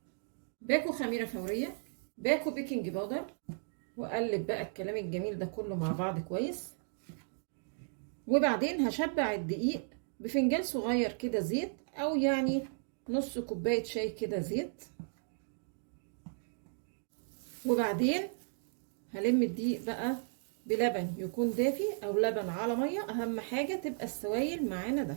باكو خميرة فورية، باكو بيكنج باودر، واقلب بقى الكلام الجميل ده كله مع بعض كويس. وبعدين هشبع الدقيق بفنجان صغير كده زيت، او يعني نص كوبايه شاي كده زيت. وبعدين هلم الدقيق بقى بلبن يكون دافي او لبن على ميه، اهم حاجه تبقى السوائل معانا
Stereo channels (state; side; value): silent; left; digital silence